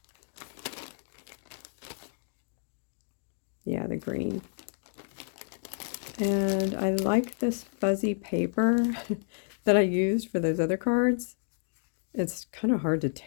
Yeah, the green. And I like this fuzzy paper that I used for those other cards. It's kind of hard to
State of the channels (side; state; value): right; silent; digital silence